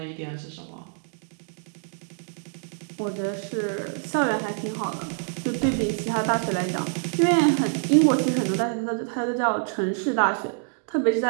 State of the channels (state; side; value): silent; left; digital silence